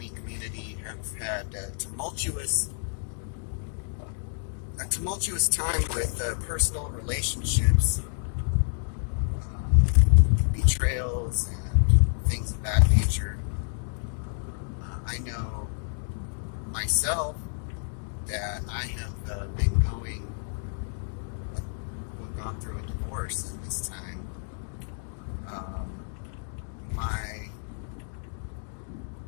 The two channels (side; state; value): right; silent; digital silence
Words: community have had a tumultuous time with personal relationships, betrayals, and things of that nature. I know myself that I have gone through a divorce in this time.